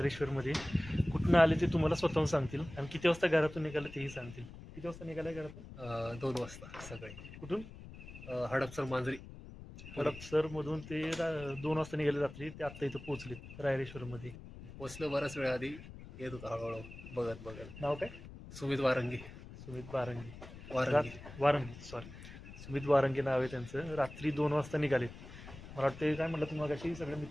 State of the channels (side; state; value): left; noise; rumble, 14 dB below the sound